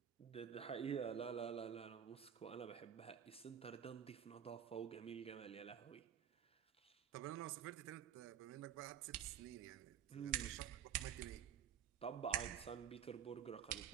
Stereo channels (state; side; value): quieter; left; 9.1 dB